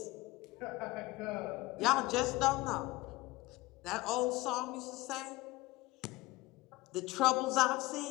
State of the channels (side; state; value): right; quieter; 20.3 dB